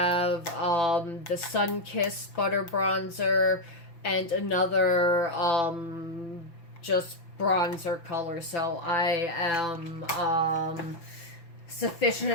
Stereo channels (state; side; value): late; right; 5.9 ms